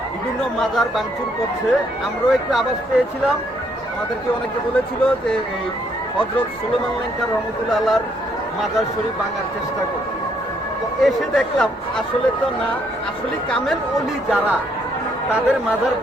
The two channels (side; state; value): both; normal; correlation 0.70